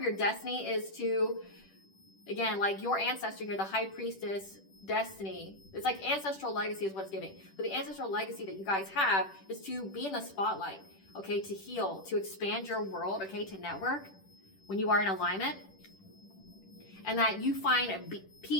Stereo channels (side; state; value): right; late; 10 ms